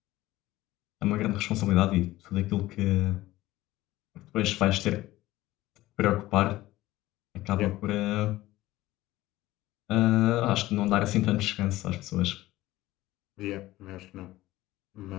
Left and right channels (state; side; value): quieter; right; 17.0 dB